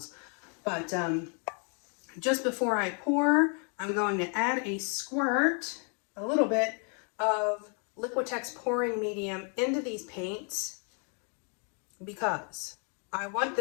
But just before I pour, I'm going to add a squirt, a little bit of Liquitex pouring medium into these paints because I want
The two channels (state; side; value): quieter; right; 39.5 dB